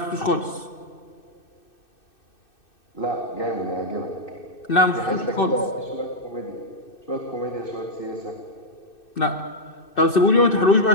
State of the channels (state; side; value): late; right; 2.6 ms